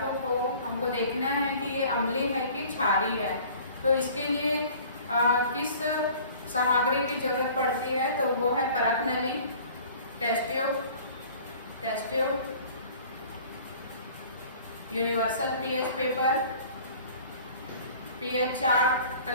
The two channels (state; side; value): inverted; both; correlation -0.48